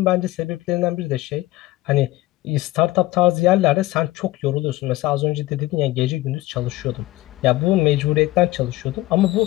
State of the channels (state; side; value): quieter; right; 17.9 dB